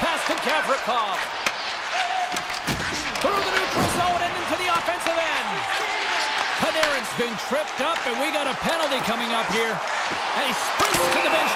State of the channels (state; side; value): identical; both; correlation 1.00